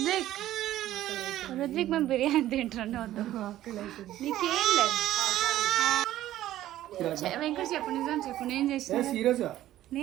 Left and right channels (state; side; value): quieter; left; 13.7 dB